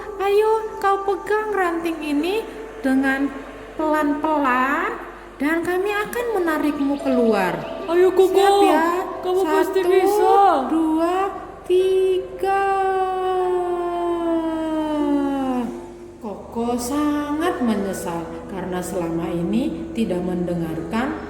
ayo kau pegang ranting ini dengan pelan-pelan dan kami akan menarikmu keluar. Ayo Koko, Siap ya? kamu 1, pasti bisa. 2, 3. Koko sangat menyesal karena selama ini tidak mendengarkan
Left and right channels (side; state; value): both; identical; correlation 1.00